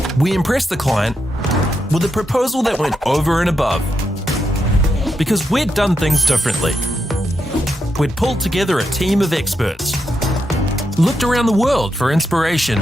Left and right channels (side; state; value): both; normal; correlation 0.84